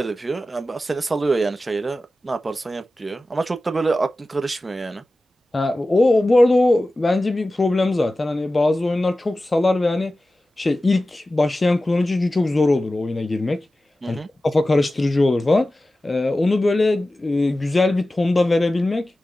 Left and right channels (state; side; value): normal; both; correlation 0.95